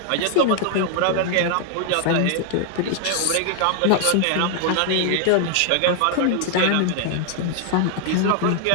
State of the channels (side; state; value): both; different; correlation 0.00